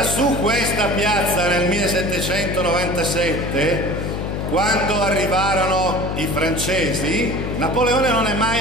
su questa piazza nel 1797, quando arrivarono i francesi, Napoleone non è mai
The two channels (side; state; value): left; noise; hum, 3 dB below the sound